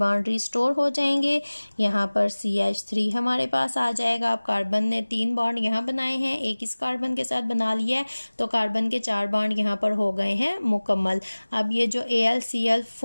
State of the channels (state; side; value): inverted; both; correlation -1.00